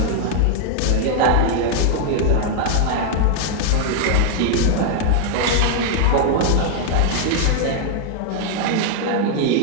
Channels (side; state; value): both; different; correlation 0.00